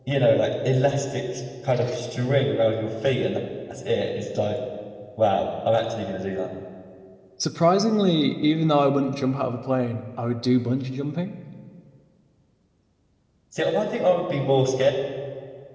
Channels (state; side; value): identical; both; correlation 1.00